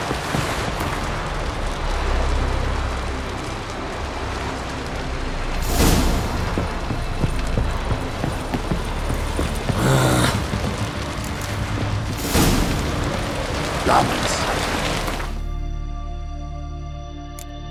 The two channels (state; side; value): identical; both; correlation 1.00